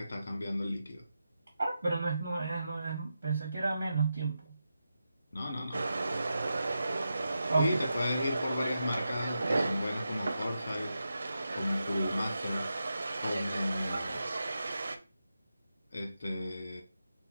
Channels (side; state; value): both; inverted; correlation -0.88